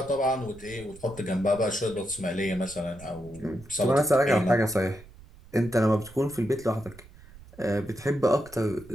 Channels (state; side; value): noise; right; rumble, 21 dB below the sound